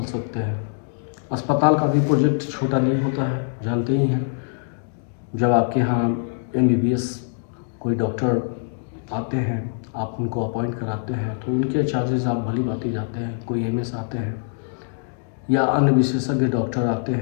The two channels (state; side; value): silent; right; digital silence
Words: सकते हैं। अस्पताल का भी प्रोजेक्ट छोटा नहीं होता है, जानते ही हैं। जब आपके यहाँ MBBS कोई डॉक्टर आते हैं, आप उनको अपॉइंट कराते हैं, तो उनके चार्जेस आप भली भांति जाते हैं। कोई MS आते हैं या अन्य विशेषज्ञ डॉक्टर आते